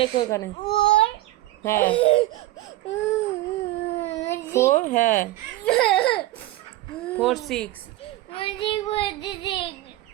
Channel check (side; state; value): left; quieter; 16.4 dB